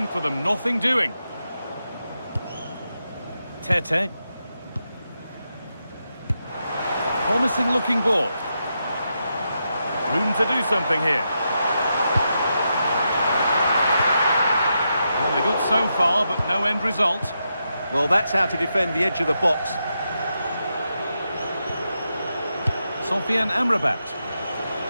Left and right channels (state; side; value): inverted; both; correlation -0.85